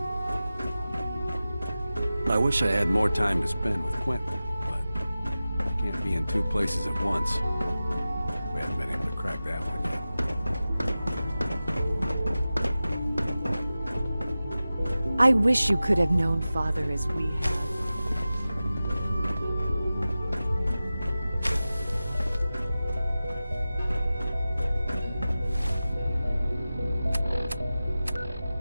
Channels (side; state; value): both; inverted; correlation -0.95